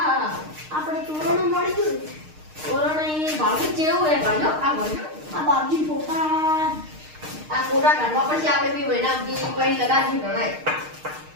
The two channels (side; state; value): left; late; 6.5 ms